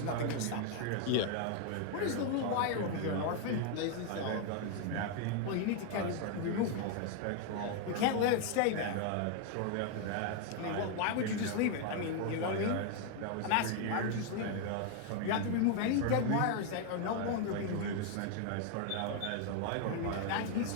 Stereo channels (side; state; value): both; different; correlation 0.01